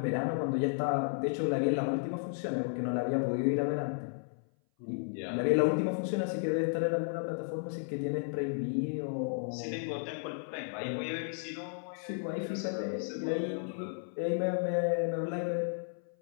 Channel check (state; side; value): silent; right; 55 dB below the other